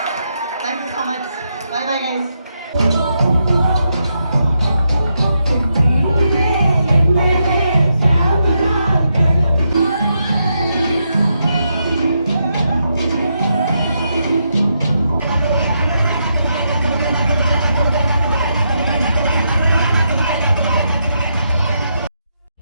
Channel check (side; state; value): both; inverted; correlation -0.81